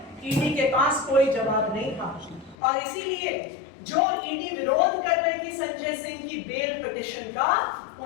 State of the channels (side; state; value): right; drops out; at 2.6 s